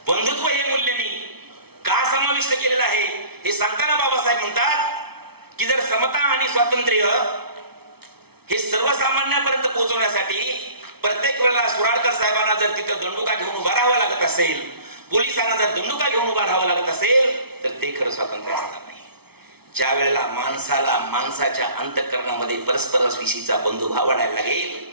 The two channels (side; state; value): left; late; 0.97 ms